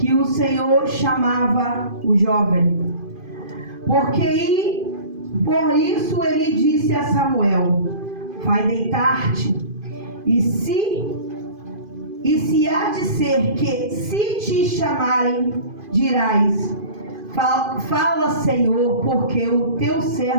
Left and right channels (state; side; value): late; left; 2.5 ms